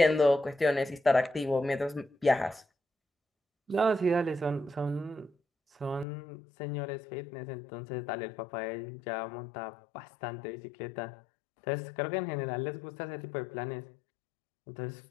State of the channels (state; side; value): drops out; right; at 6.1 s